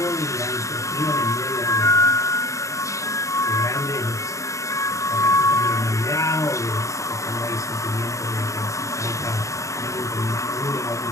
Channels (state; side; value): late; right; 0.15 ms